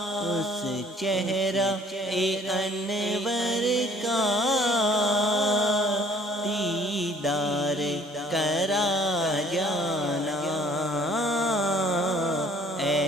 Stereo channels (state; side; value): normal; both; correlation 0.57